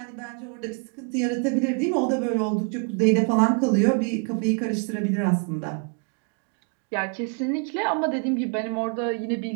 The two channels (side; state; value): left; quieter; 38.2 dB